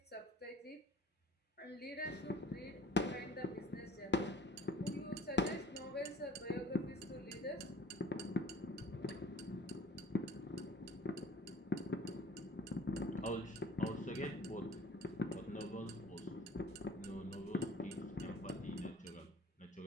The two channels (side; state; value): both; normal; correlation 0.49